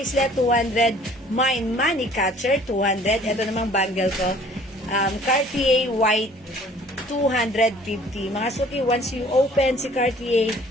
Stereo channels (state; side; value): normal; both; correlation 0.53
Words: 200. Mine, Money Catcher, 200. Ito namang bangle ko. Cartier White, 250. Mga suki, once you open si Cartier,